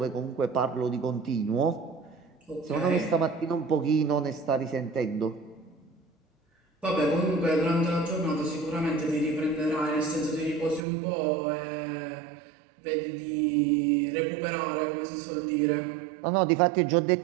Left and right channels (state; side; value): drops out; left; at 10.9 s